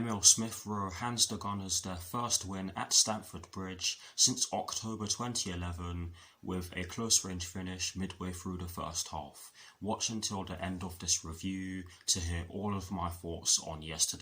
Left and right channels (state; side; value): identical; both; correlation 1.00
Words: Smith Rowe hands the Gunners their first win at Stamford Bridge since October 2011 with a close-range finish midway through the first half. Watch until the end of this review to hear all of my thoughts on